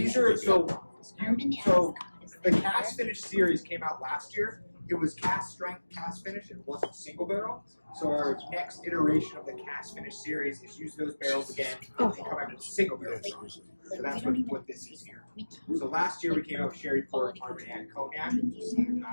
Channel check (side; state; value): both; inverted; correlation -1.00